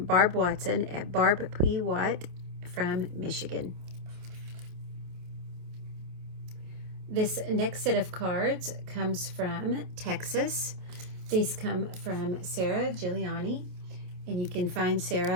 Barb Watson at Barb P. Watt from Michigan. This next set of cards comes from Texas. These come from Sarah Giuliani. And you can find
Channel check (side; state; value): left; late; 28 ms